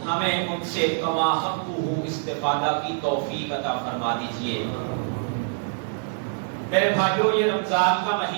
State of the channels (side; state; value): left; silent; digital silence